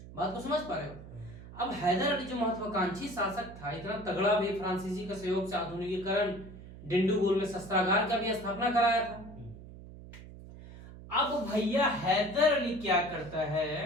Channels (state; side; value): noise; right; hum, 16 dB below the sound